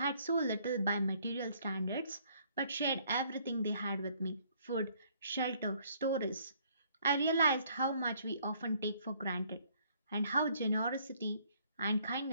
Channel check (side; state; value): both; inverted; correlation -0.63